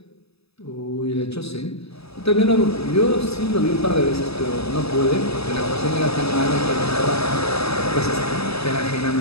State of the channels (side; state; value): right; late; 0.78 ms